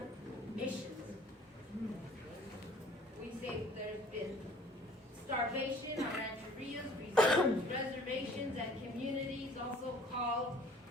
missions. We say there's been starvation on rancherias, reservations, and communities, also called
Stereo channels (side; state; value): both; normal; correlation 0.53